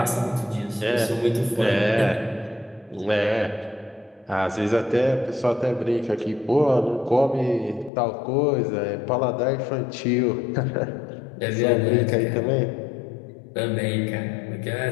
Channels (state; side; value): drops out; right; at 7.9 s